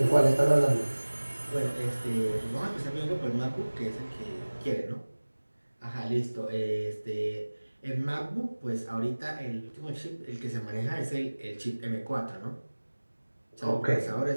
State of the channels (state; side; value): inverted; both; correlation -1.00